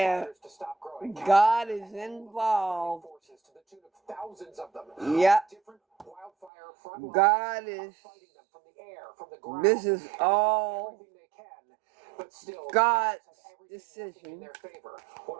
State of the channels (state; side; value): drops out; left; at 6.5 s